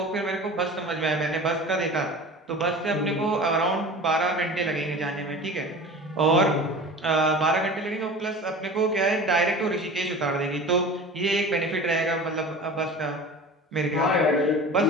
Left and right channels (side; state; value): both; normal; correlation 0.37